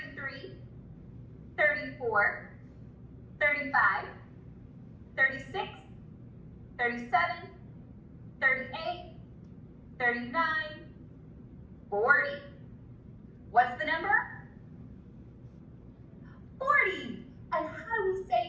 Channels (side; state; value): both; identical; correlation 1.00